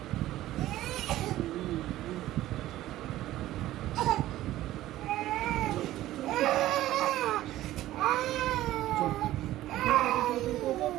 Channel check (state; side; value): quieter; left; 14.9 dB